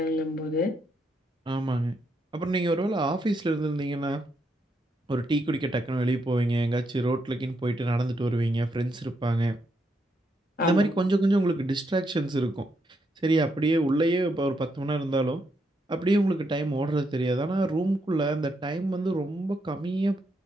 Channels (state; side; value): normal; both; correlation 0.79